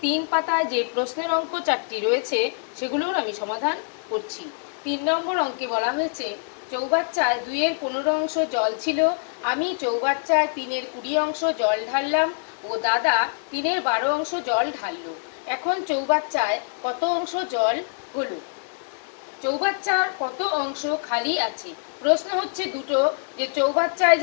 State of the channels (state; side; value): silent; right; 58 dB below the other